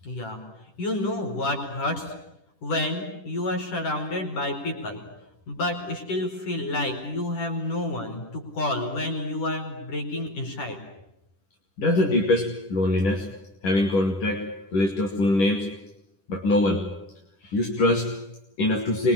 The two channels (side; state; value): right; late; 10 ms